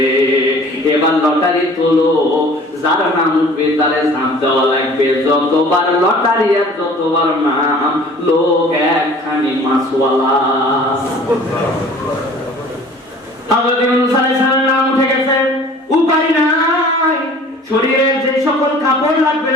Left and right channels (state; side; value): normal; both; correlation 0.48